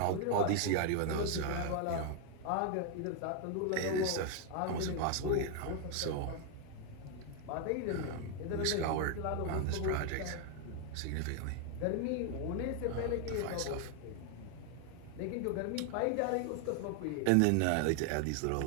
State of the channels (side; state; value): both; different; correlation 0.00